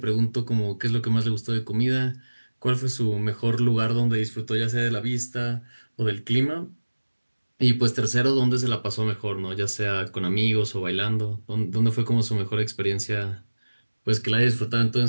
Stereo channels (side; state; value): both; inverted; correlation -1.00